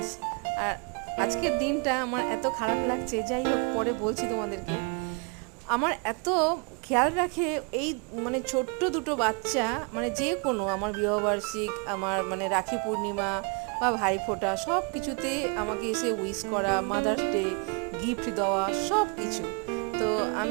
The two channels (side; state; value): left; quieter; 33.8 dB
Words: আর আজকের দিনটা আমার এত খারাপ লাগছে, যাই হোক পরে বলছি তোমাদেরকে। আমার এত খেয়াল রাখে এই মানে ছোট্ট দুটো বাচ্চা, মানে যে কোনো আমার বিবাহবার্ষিক, আমার মানে রাখি পূর্ণিমা বা ভাইফোঁটা, সব কিছুতে আমাকে এসে উইশ করা, মাদার্স ডে গিফট দেওয়া, সব কিছু। তো